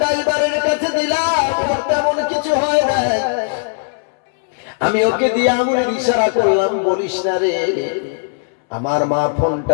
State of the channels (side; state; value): right; silent; 68 dB below the other